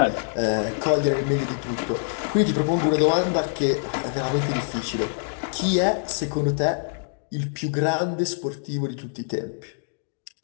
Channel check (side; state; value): right; silent; digital silence